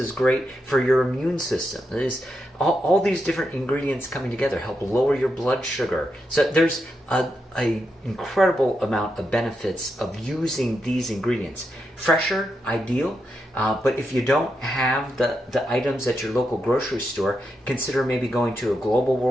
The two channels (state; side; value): normal; both; correlation 0.84